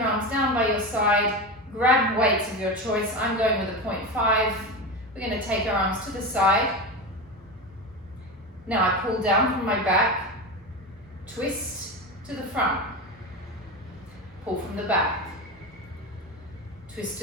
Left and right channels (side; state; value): both; normal; correlation 0.21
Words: arms down by your side, grab weights of your choice. I'm going with a 0.5. We're going to take our arms to the side. Now I pull down from my back, twist to the front, pull from the back, twist